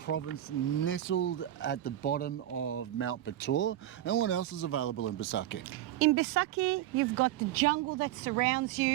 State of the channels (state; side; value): quieter; left; 13.0 dB